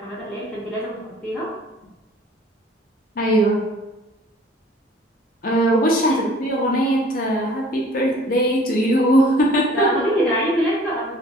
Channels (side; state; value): both; normal; correlation 0.51